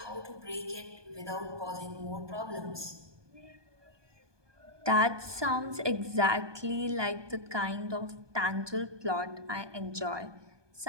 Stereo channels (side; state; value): left; late; 1.2 ms